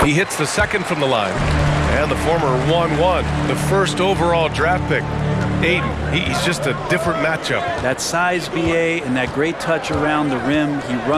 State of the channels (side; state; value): both; identical; correlation 1.00